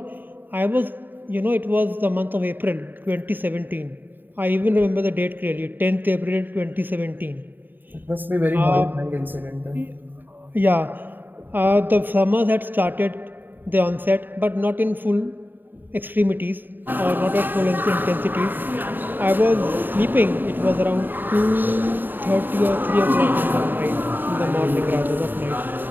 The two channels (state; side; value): late; left; 0.092 ms